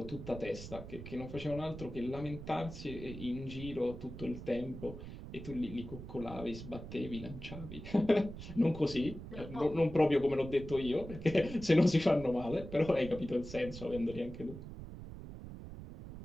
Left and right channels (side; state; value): right; noise; rumble, 11 dB below the sound